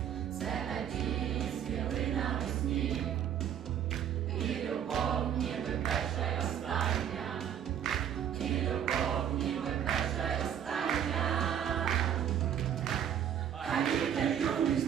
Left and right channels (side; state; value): left; quieter; 9.4 dB